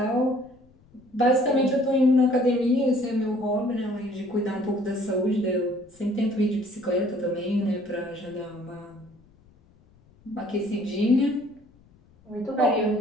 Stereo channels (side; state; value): left; noise; rumble, 29 dB below the sound